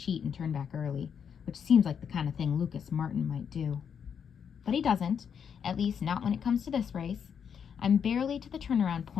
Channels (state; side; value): quieter; right; 7.4 dB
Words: and turn back early, which seems like the kind of thing Lucas Martin might do. But he doesn't, at least not when it comes to this race. I'm barely to the turnaround